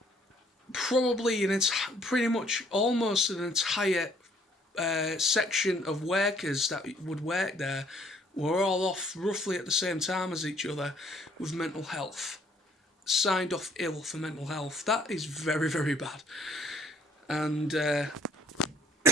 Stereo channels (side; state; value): both; normal; correlation 0.62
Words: probably pretty much almost an entire section of workers that would work there were all off roughly at the same time as each other with mental health. Signed off ill for mental health. That is very, very bad. And